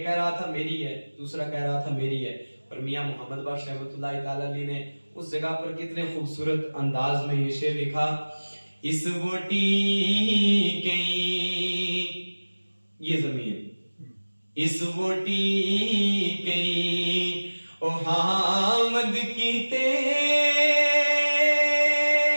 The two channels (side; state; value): both; inverted; correlation -1.00